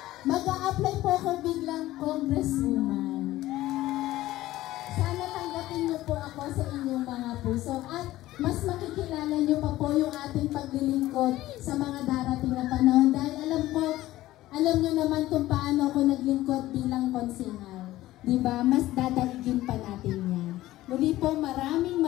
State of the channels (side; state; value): right; quieter; 16.0 dB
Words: Mag-a-apply po ako biglang Congresswoman. Sana tanggapin niyo po ako sa inyong mga puso at mas makikilala niyo pa po yung ating paglilingkod sa mga darating na panahon. Dahil alam niyo naman kung paano ako naglingkod bilang konsehal. Diba? Mas dadaigin pa natin yan. Muli po, maraming